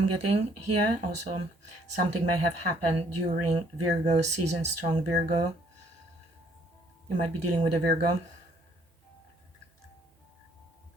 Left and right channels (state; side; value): normal; both; correlation 0.63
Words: getting here. Also something may have happened during Virgo season, strong Virgo. You might be dealing with a Virgo.